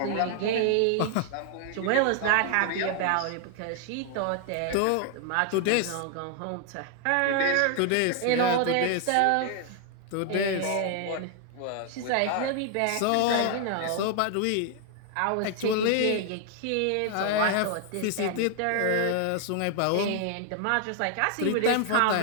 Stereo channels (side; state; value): both; different; correlation 0.00